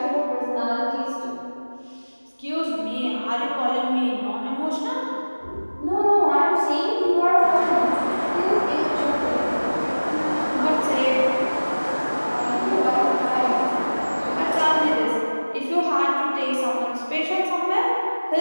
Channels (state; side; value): inverted; both; correlation -1.00